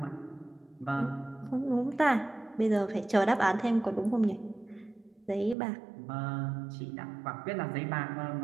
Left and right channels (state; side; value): drops out; left; at 5.6 s